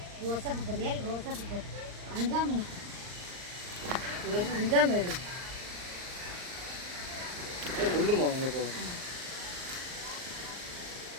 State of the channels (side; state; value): left; late; 39 ms